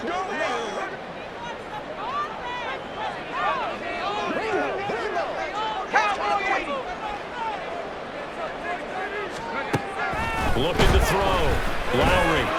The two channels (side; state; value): both; identical; correlation 1.00